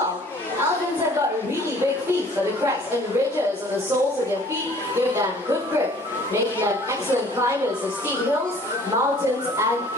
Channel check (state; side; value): normal; both; correlation 0.53